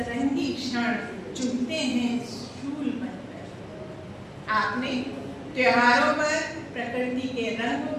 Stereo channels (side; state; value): both; identical; correlation 1.00